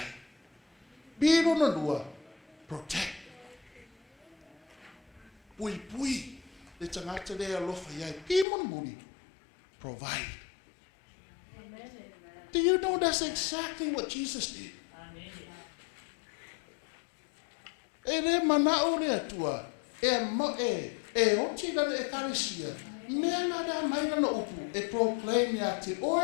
Piro na lua, protect. Pui, le tangata le alofa iai, ki muni, provide. Amen. Do you know that's exactly what Jesus did? Amen. E le manao le atua, e oti na e karesia, mea na da maina no upu, e proclaim ya te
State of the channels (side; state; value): right; drops out; at 8.5 s